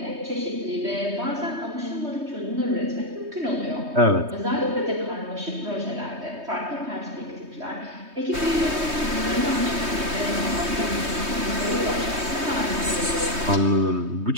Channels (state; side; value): late; left; 3.2 ms